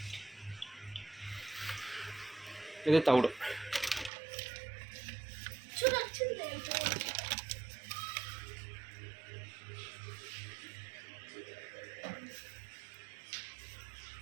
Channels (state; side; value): drops out; left; at 4.1 s